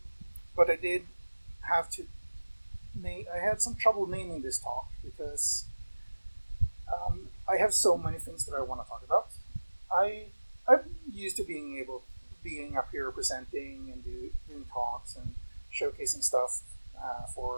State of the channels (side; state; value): both; inverted; correlation -1.00